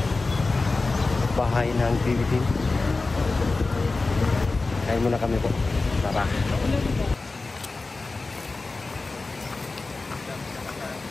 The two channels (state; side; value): quieter; right; 3.6 dB